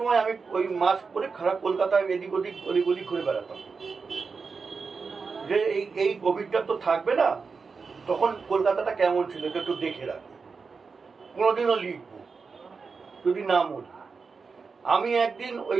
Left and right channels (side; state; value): left; quieter; 4.9 dB